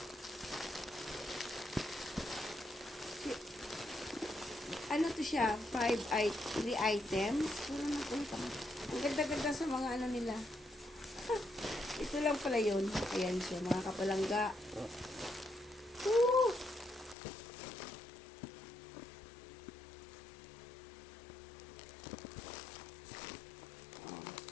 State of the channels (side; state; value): right; drops out; at 17.2 s